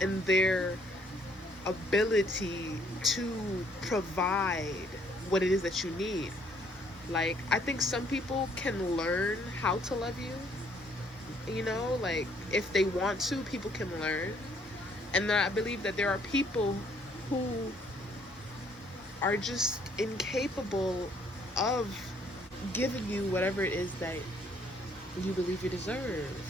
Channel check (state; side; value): normal; both; correlation 0.65